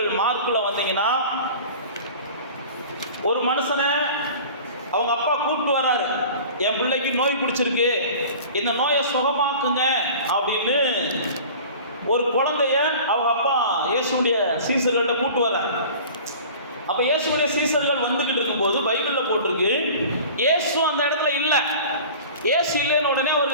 மார்க்குல வந்தீங்கன்னா, ஒரு மனுஷனை அவங்க அப்பா கூப்பிட்டு வர்றாரு, என் பிள்ளைக்கு நோய் பிடிச்சிருக்கு, இந்த நோயை சுகமாக்குங்க அப்படின்னு ஒரு குழந்தைய அவங்க அப்பா இயேசுடைய சீசர்கள்ட்ட கூப்பிட்டு வர்றாரு. அப்போ இயேசுடைய சீசர்கள் வந்துக்கிட்டு இருக்கும்போது பைபிளில் போட்டிருக்கு, இயேசு அந்த இடத்துல இல்லை. இயேசு இல்லைன்னு உடனே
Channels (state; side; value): inverted; both; correlation -0.41